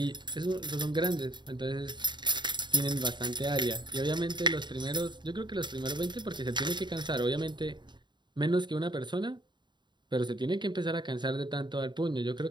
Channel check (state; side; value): late; left; 0.22 ms